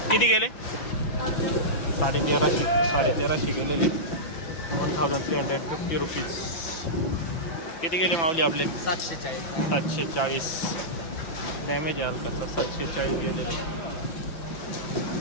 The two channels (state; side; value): late; right; 6.0 ms